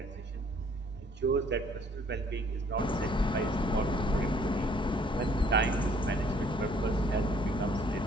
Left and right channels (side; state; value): both; normal; correlation 0.60